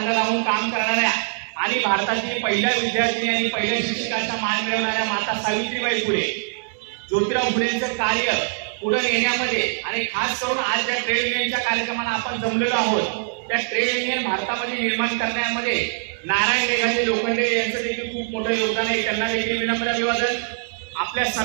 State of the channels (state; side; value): silent; left; 64 dB below the other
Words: लावून काम करणाऱ्या आणि भारतातील पहिल्या विद्यार्थिनी आणि पहिल्या शिक्षकाचा मान मिळवणाऱ्या माता सावित्रीबाई फुले, ज्योतिराव फुलेंचे कार्य पुढे नेण्यामध्ये आणि खास करून आज ज्या ट्रेड युनियनच्या कार्यक्रमाला आपण जमलेलो आहोत त्या ट्रेड युनियन भारतामध्ये निर्माण करण्यामध्ये नारायण मेघाजी लोखंडे यांचं देखील खूप मोठं योगदान आहे. त्यांना देखील विनम्र अभिवादन. आपल्या